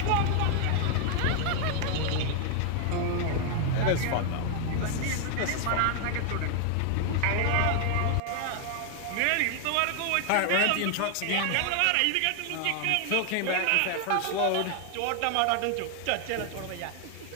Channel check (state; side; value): different; both; correlation 0.00